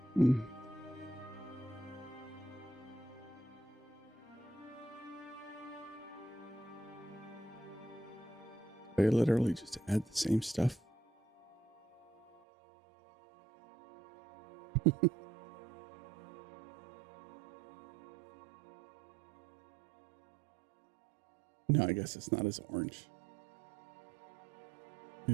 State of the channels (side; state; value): left; drops out; at 12.2 s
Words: Hmm. They literally just add the same stuff. No, I guess it's not as orange.